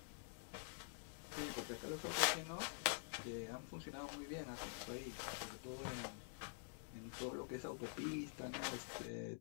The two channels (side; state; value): right; silent; digital silence